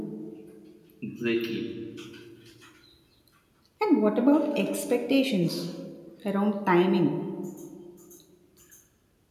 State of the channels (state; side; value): identical; both; correlation 1.00